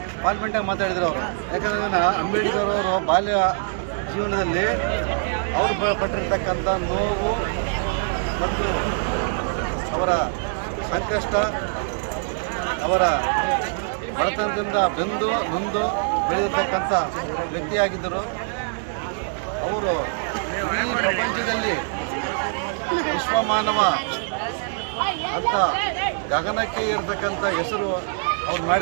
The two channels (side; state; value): left; silent; digital silence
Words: ಪಾರ್ಲಿಮೆಂಟಾಗಿ ಮಾತಾಡಿದ್ರು ಅವರು. ಯಾಕಂದರೆ ಅಂಬೇಡ್ಕರ್ ಅವರು ಬಾಲ್ಯ ಜೀವನದಲ್ಲಿ ಅವರು ಪಟ್ಟಿರ್ತಕ್ಕಂಥ ನೋವು ಮತ್ತು ಅವರ ಸಂಕಷ್ಟ, ಅವರ ಬಡತನದಿಂದ ಬೆಂದು ನೊಂದು ಬೆಳೆದಿರ್ತಕ್ಕಂಥ ವ್ಯಕ್ತಿಯಾಗಿದ್ದರು. ಅವರು ಇಡೀ ಪ್ರಪಂಚದಲ್ಲಿ ವಿಶ್ವಮಾನವ ಅಂತ ಗಗನಕ್ಕೆ ಇರತಕ್ಕಂಥ ಹೆಸರು ಅವ್ರು